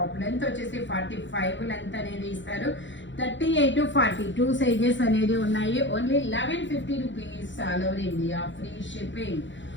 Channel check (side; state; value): right; late; 0.54 ms